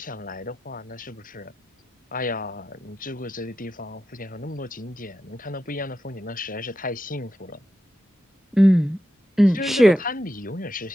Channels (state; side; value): normal; both; correlation 0.88